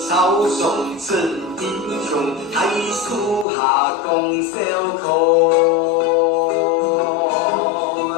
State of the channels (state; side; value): drops out; right; at 3.5 s